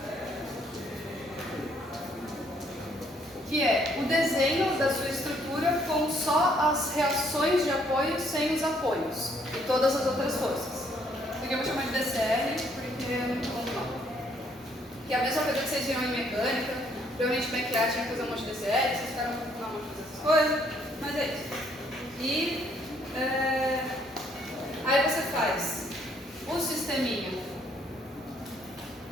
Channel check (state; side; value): normal; both; correlation 0.67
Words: que é o desenho da sua estrutura com só as reações de apoio sem os apoios e todas as outras forças. Isso aqui eu vou chamar de DCR porque é muito bom não. Que é a mesma coisa que vocês viram em mecânica. Provavelmente McLaren tinha que fazer um monte de DCR, vocês ficaram com um monte de essas coisas, mas é isso. E aí você faz o sisteminha